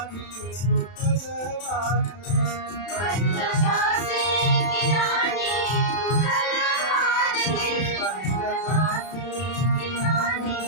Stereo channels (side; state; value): right; late; 31 ms